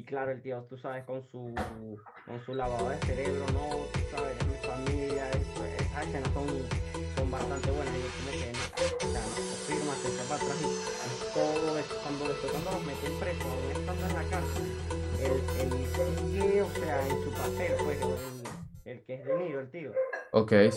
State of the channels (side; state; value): both; identical; correlation 1.00